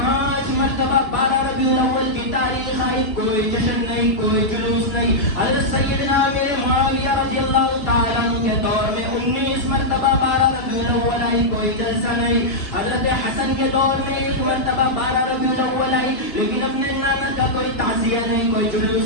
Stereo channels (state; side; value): late; right; 2.8 ms